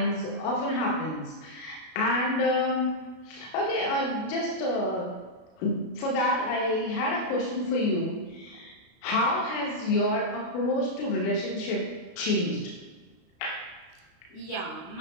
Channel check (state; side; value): late; right; 32 ms